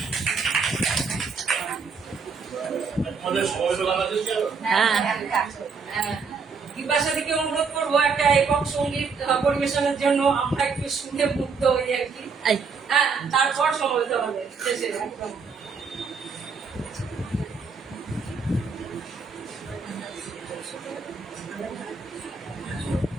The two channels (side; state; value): left; quieter; 5.2 dB